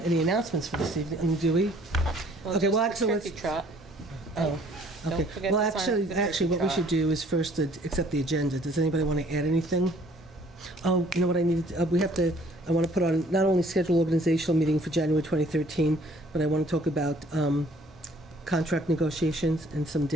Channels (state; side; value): normal; both; correlation 0.59